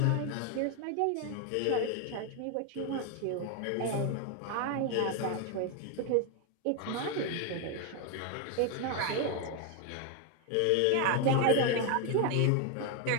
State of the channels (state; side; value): different; both; correlation 0.01